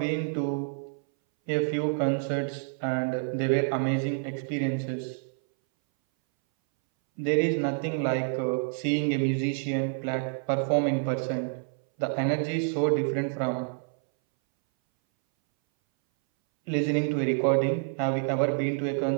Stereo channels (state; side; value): silent; left; 59 dB below the other